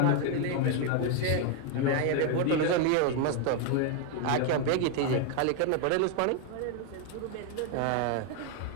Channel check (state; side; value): different; both; correlation 0.01